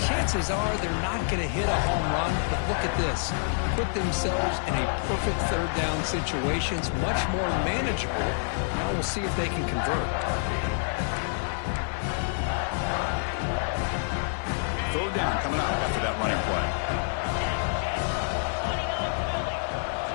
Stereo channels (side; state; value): right; silent; digital silence